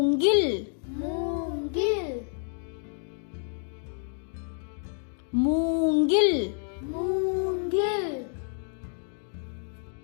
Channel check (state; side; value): silent; right; 59 dB below the other